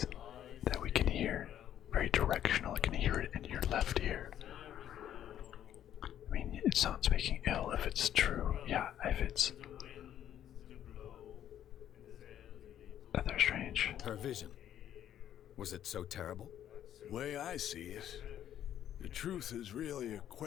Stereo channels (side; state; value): right; quieter; 10.8 dB